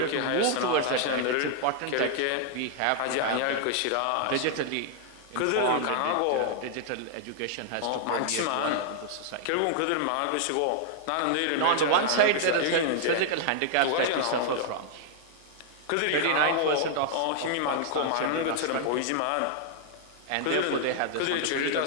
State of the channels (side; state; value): both; different; correlation -0.01